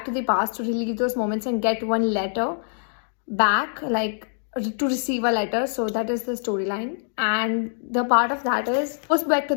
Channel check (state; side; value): silent; right; digital silence